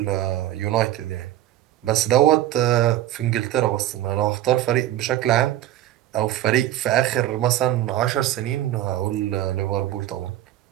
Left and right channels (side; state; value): left; quieter; 13.6 dB